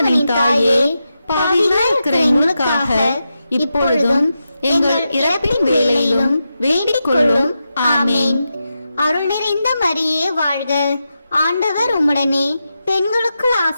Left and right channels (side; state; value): both; inverted; correlation -0.88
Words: தாயே, பாவிகளாய் இருக்கிற எங்களுக்காக இப்பொழுதும் எங்கள் இறப்பின் வேளையிலும் வேண்டிக் கொள்ளும். ஆமேன். அருள் நிறைந்த மரியே வாழ்க, ஆண்டவர் உம்முடனே, பெண்களுக்குள்